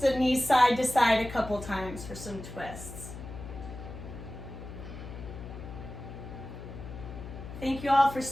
knees side to side a couple times for some twists. Thank you all for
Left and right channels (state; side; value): noise; left; hum, 11 dB below the sound